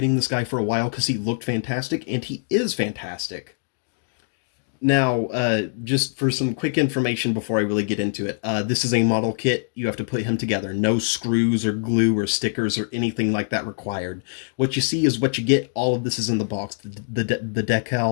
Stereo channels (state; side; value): silent; right; digital silence